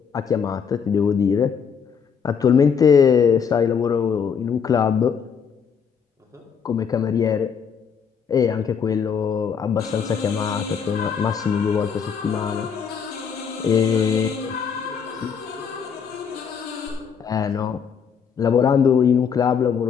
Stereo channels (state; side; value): quieter; right; 6.8 dB